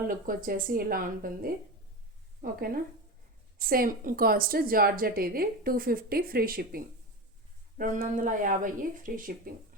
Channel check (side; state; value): both; normal; correlation 0.23